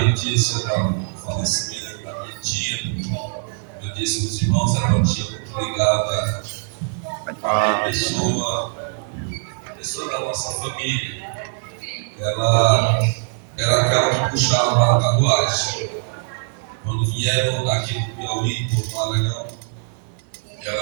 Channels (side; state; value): left; silent; 63 dB below the other